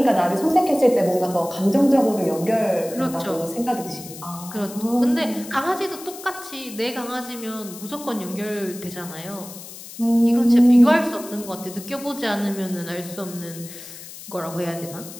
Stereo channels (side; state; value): left; noise; hiss, 14 dB below the sound